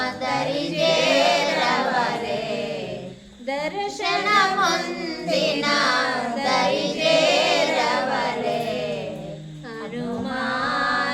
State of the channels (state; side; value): identical; both; correlation 1.00